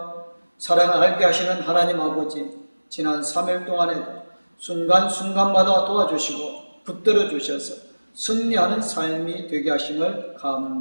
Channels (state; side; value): inverted; both; correlation -1.00